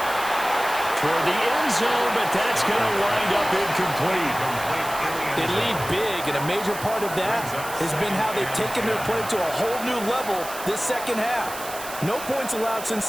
Toward the end zone, but that's going to wind up incomplete. They lead big, and a major part of that has been how they've taken their play to a whole new level this second half. No points allowed since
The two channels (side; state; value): right; noise; hiss, 11 dB below the sound